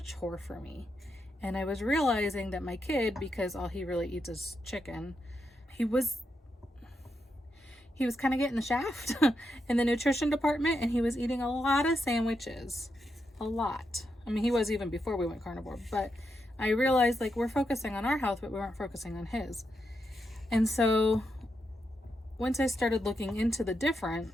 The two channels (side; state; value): both; normal; correlation 0.83